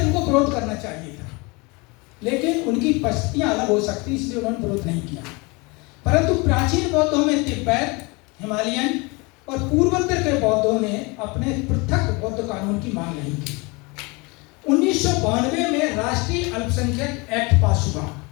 उनको विरोध करना चाहिए था, लेकिन उनकी परिस्थितियां अलग हो सकती, इसलिए उन्होंने विरोध नहीं किया। परंतु प्राचीन बौद्धों में तिब्बत, हिमालयन और पूर्वोत्तर के बौद्धों ने अपने पृथक बौद्ध कानून की मांग नहीं की। 1992 में राष्ट्रीय अल्पसंख्यक एक्ट पास हुआ,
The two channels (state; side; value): quieter; right; 27.2 dB